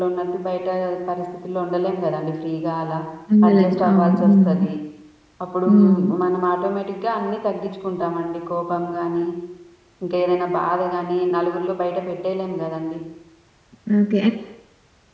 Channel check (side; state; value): both; identical; correlation 1.00